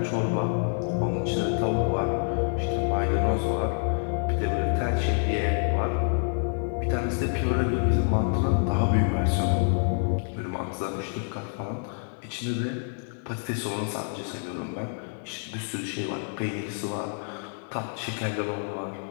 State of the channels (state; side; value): silent; right; 60 dB below the other